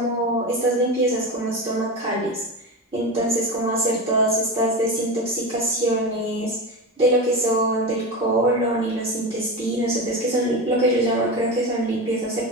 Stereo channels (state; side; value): normal; both; correlation 0.22